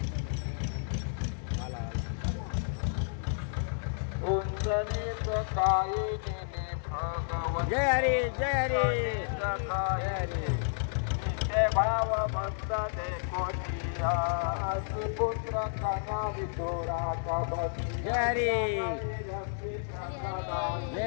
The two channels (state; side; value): silent; right; digital silence